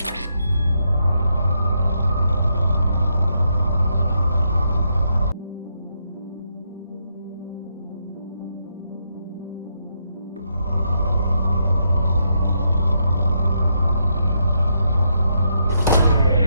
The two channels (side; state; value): both; inverted; correlation -0.79